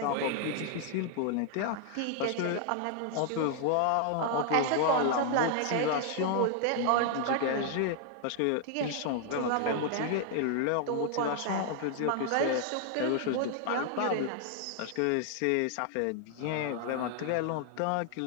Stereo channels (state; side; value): different; both; correlation 0.00